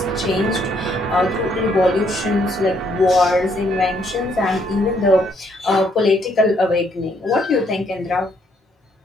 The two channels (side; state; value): both; normal; correlation 0.70